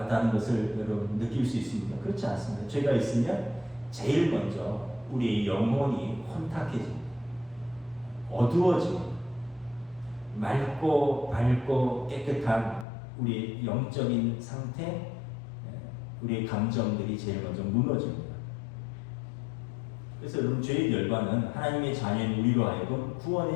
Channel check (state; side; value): drops out; right; at 12.9 s